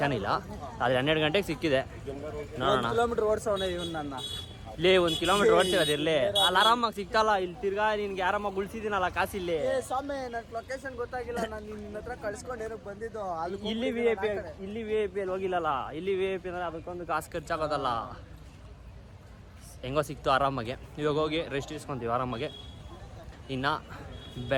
ಇಲ್ಲ. ಆದರೆ 12 ಗಂಟೆಗೆ ಸಿಕ್ಕಿದೆ. ನೋಡೋಣ. ಕಿಲೋಮೀಟರ್ ಓಡಿಸೋಣ ಇವನು ನನ್ನ. ಇಲ್ಲಿ 1 ಕಿಲೋಮೀಟರ್ ಓಡಿಸಿರೋದಿರಲಿ, ಅಲ್ಲಿ ಆರಾಮಾಗಿ ಸಿಗ್ತಲ್ಲ. ಇಲ್ಲಿ ತಿರ್ಗಾ ನಿನ್ಗೆ ಆರಾಮಾಗಿ ಉಳಿಸಿದ್ದೀನಲ್ಲ ಕಾಸಿಲ್ಲಿ. ಸ್ವಾಮಿ ನನ್ ಲೊಕೇಶನ್ ಗೊತ್ತಾಗಿಲ್ಲ, ನಾನು ನಿನ್ನ ಹತ್ರ ಕಳ್ಸ್ಕೊಂಡು ಏನಕ್ಕೆ ಬಂದಿದ್ದು. ಇಲ್ಲಿ VIP ಅಲ್ಲಿ ಹೋಗಿಲ್ಲಲ್ಲ. ಇಲ್ಲಿ VIP ಅಂದರೆ ಅದಕ್ಕೊಂದು ಕಾಸು ಖರ್ಚಾಗೋದಲ್ಲ. ಹೆಂಗೋ ಸಿಕ್ತು ಆರಾಮಾಗೆ. ಇವಾಗ ಹೋಗಿ ರೆಸ್ಟ್ ಇಸ್ಕೊತೀವಿ ಆರಾಮಾಗೆ. ಇನ್ನು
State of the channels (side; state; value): both; identical; correlation 1.00